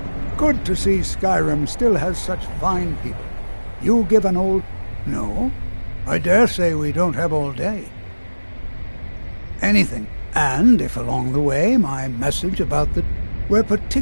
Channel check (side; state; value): both; inverted; correlation -1.00